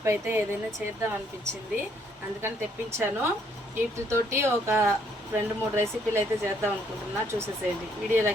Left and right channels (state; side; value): normal; both; correlation 0.68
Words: అయితే ఏదైనా చేద్దాం అనిపించింది, అందుకని తెప్పించాను. వీటితోటి ఒక 2-3 రెసిపీలు అయితే చేద్దాం అనుకుంటున్నా. చూసేసేయండి,